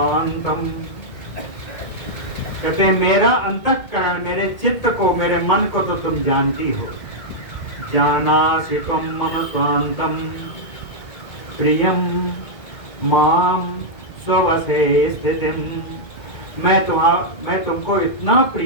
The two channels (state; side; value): late; right; 1.8 ms